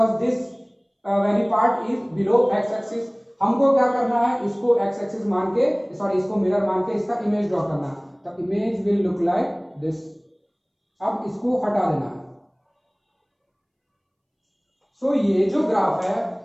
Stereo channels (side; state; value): both; identical; correlation 1.00